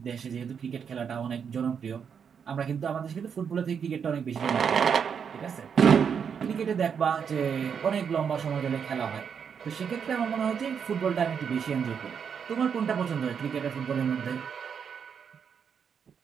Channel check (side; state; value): left; quieter; 7.1 dB